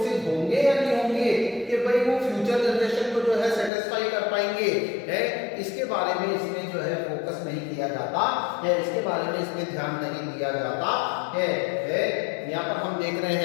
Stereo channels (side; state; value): right; drops out; at 3.7 s